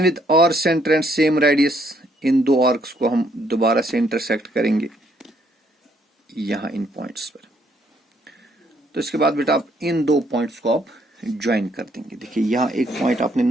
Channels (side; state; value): both; normal; correlation 0.70